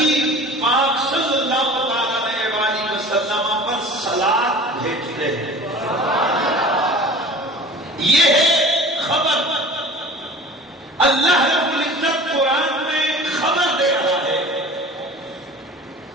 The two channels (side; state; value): both; normal; correlation 0.42